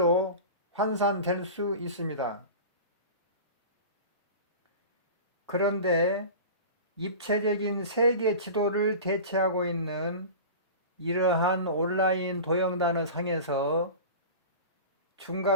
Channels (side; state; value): both; inverted; correlation -0.33